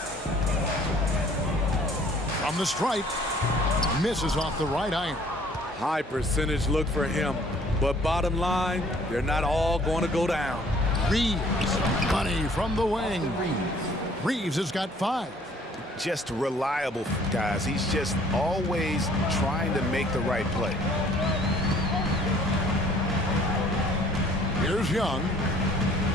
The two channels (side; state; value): both; normal; correlation 0.57